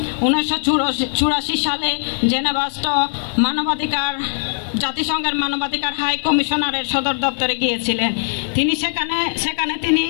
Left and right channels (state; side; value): silent; right; digital silence